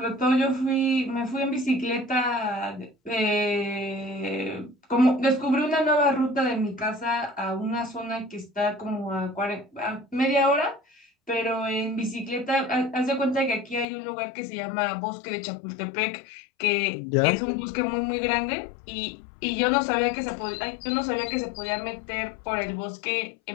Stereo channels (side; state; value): right; drops out; at 13.9 s